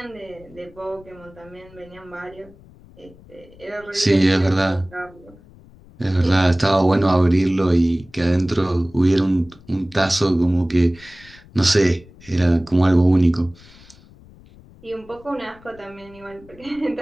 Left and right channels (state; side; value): noise; left; rumble, 24 dB below the sound